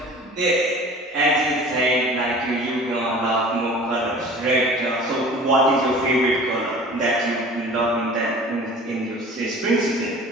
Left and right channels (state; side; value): normal; both; correlation 0.43